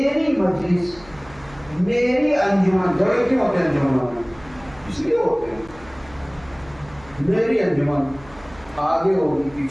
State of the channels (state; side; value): noise; right; hum, 23 dB below the sound